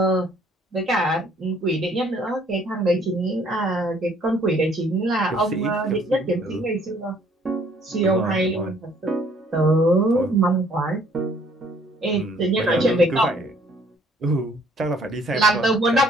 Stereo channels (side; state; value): both; normal; correlation 0.61